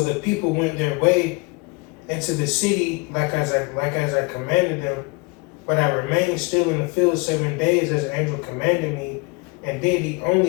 the people went their way into the city like as I commanded them. But I remained still in the field 7 days as the angel commanded me, and did eat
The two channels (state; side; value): quieter; right; 28.3 dB